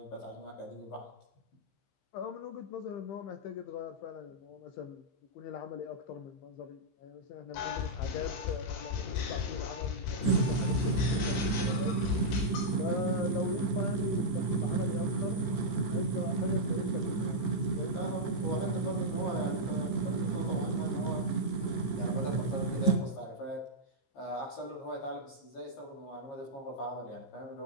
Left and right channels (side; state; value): right; late; 15 ms